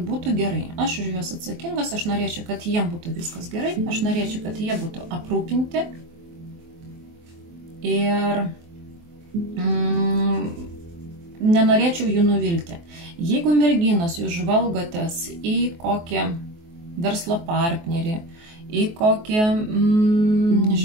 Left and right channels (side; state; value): left; late; 23 ms